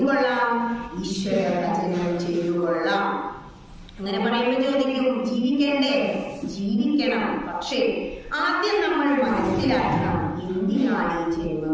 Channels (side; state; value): both; identical; correlation 1.00